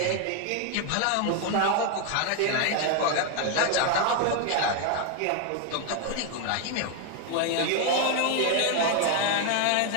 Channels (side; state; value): both; different; correlation 0.01